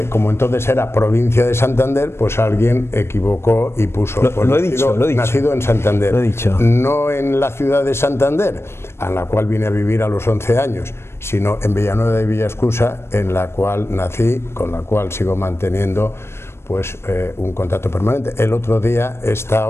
como entonces era provincia de Santander, pues alguien equivocó y puso lo he dicho. Nacido en Santander, lo he dicho. No en la ciudad de Santander, a la cual vine a vivir a los 11 años, sino en Villanueva de Villascusa, en la cual nací, con la cual sigo manteniendo pues un contacto permanente. El otro día he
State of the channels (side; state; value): right; late; 0.12 ms